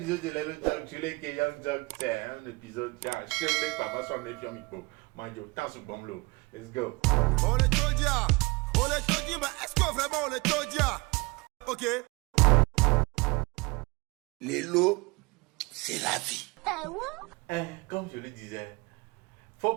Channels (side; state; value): left; quieter; 25.2 dB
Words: de Lelo Talk, tu l'es que Young Talk, c'est un épisode, genre, je sais pas, moi, je suis un micro. Moi, je t'en suis bon l'eau. Let's go. On est Todia, mais est-ce que vraiment on est Todia? Ok. Lelo, c'est la vie. Comme je le disais, faut